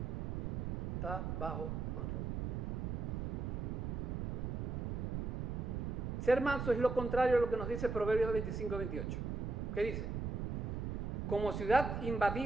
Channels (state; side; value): noise; right; rumble, 2 dB below the sound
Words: Está bajo control. Ser manso es lo contrario a lo que nos dice Proverbios 25:28. ¿Qué dice? Como ciudad